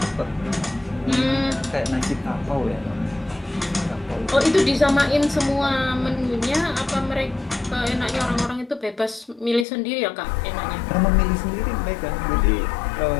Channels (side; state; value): right; drops out; at 9.7 s